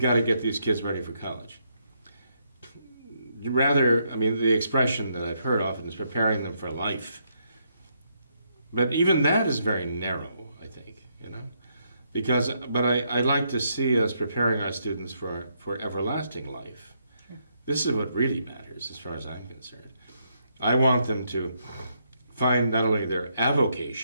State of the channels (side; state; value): both; inverted; correlation -0.76